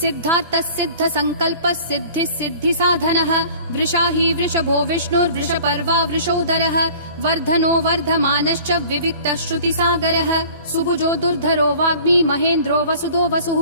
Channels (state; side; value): inverted; both; correlation -0.47